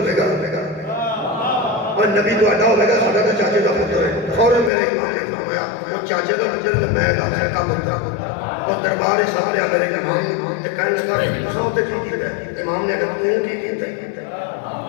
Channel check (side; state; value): right; drops out; at 4.7 s